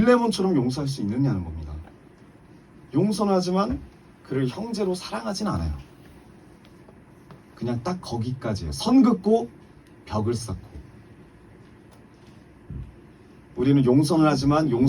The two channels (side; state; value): both; identical; correlation 1.00